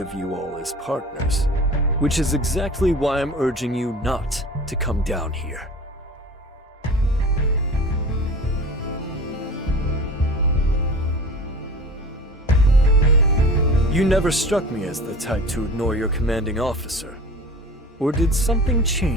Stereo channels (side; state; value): both; normal; correlation 0.38